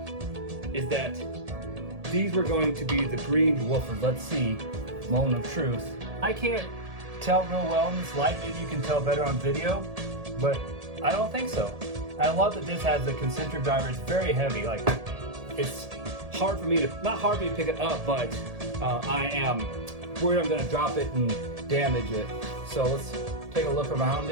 is that these were going to be the green woofers. Let's see, moment of truth. I can't tell real well in this light. Maybe you can tell better on video, but I don't think so. I love that this has the concentric driver. It's very heavy. Like, it's hard for me to, not hard for me to pick it up, but I am worried I'm gonna drop it and damage it. So let's take a look around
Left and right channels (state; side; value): late; left; 1.7 ms